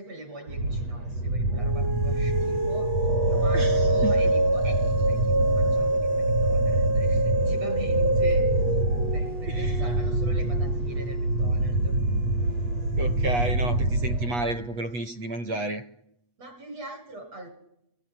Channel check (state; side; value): late; left; 8.3 ms